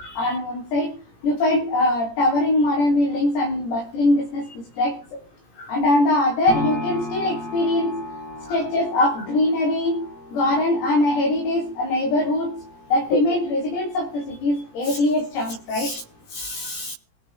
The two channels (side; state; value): right; late; 17 ms